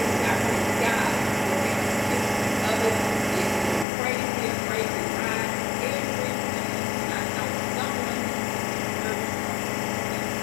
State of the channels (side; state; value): right; drops out; at 3.9 s